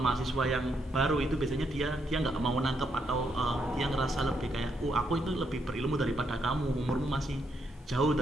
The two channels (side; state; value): both; normal; correlation 0.77